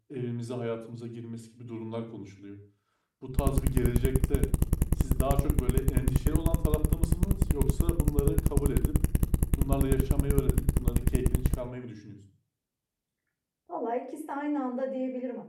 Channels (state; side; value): identical; both; correlation 1.00